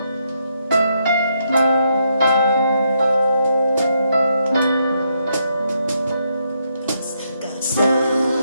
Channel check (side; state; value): both; inverted; correlation -0.77